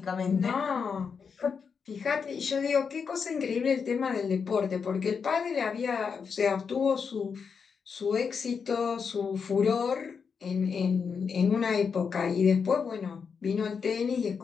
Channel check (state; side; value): quieter; right; 6.0 dB